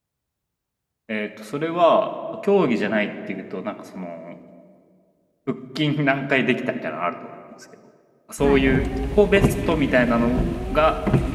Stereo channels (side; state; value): both; identical; correlation 1.00